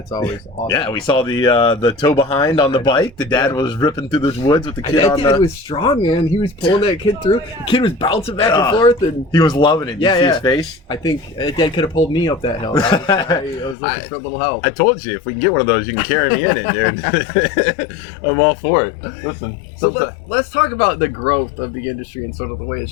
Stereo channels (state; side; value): drops out; right; at 13.8 s